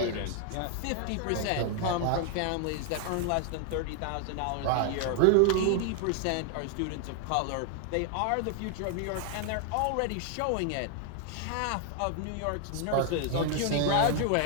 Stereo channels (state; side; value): different; both; correlation 0.00